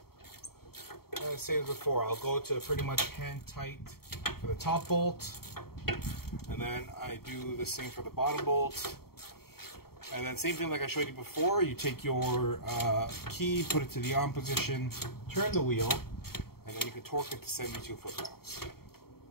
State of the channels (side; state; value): right; late; 0.95 ms